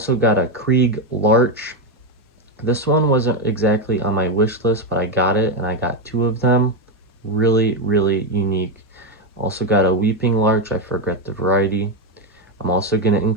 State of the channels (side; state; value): both; normal; correlation 0.07